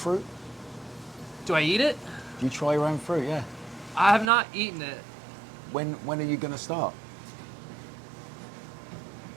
Do I eat it? Do you try your own fruit? Yeah. I have not eaten it. When are you going to start?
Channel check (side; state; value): left; drops out; at 4.3 s